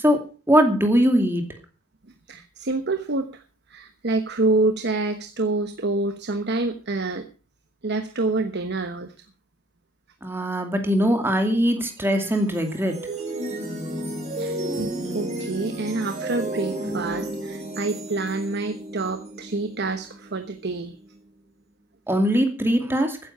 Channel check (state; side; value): normal; both; correlation 0.61